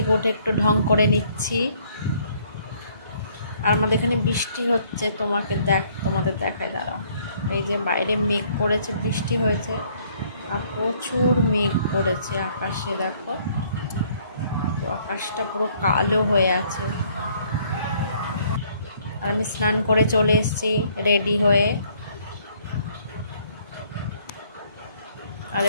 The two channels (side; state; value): both; inverted; correlation -0.63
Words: উঠে একটু ঢং করে নিচ্ছি। আর আমাদের এখানে বৃষ্টি হচ্ছে, তোমাদের দেখায়, দাঁড়াও। এই যে বাইরে মেঘ করেছে, বৃষ্টি হয়েছে আর প্রচুর মেঘ করেছে আকাশে, দেখো আকাশটা পুরো কালো হয়ে আছে। আর আমি স্নান করে চলে এসেছি রেডি হয়ে। আর